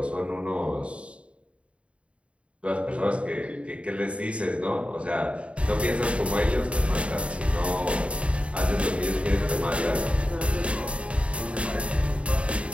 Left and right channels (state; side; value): late; left; 0.061 ms